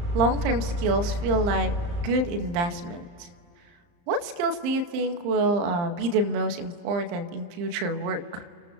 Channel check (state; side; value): late; left; 34 ms